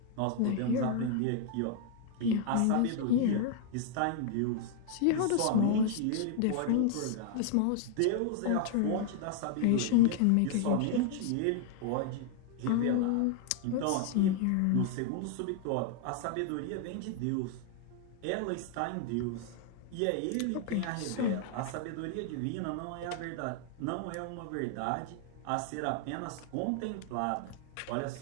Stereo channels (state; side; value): different; both; correlation 0.00